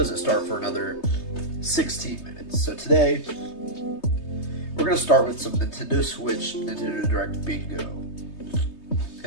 start for another 16 minutes. So today, we're going to start with some Nintendo Switch, Nintendo Direct Bingo. And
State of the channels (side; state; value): right; late; 3.3 ms